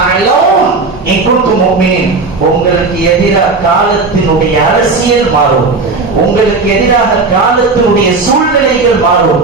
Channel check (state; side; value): quieter; left; 3.9 dB